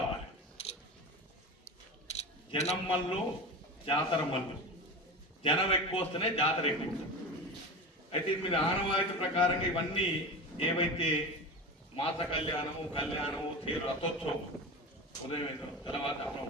జనం మల్లు జాతర మల్లు. జనం ఎక్కువ వస్తేనే జాతర ఎక్కువ. అయితే మీరు ఆనవాయితీ ప్రకారంగా ఇవన్నీ ఏవైతే మాత కళ్యాణము తీరు రథోత్సవం ఉదయం తెల్లవారుజామున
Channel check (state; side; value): normal; both; correlation 0.27